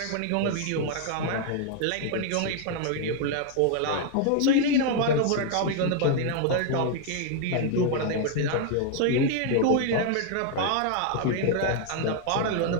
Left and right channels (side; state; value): both; different; correlation 0.00